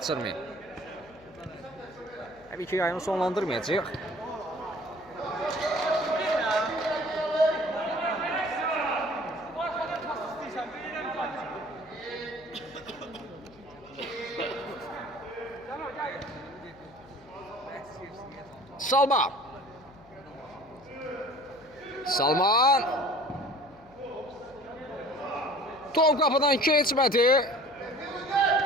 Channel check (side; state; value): left; noise; hum, 25 dB below the sound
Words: Təbii ki yayını sonlandırmayacaq. Salman. Salman. Top qapıdan keçmədi.